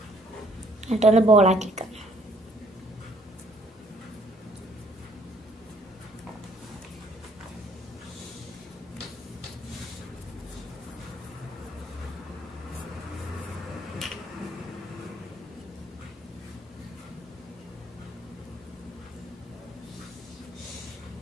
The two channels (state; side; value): normal; both; correlation 0.63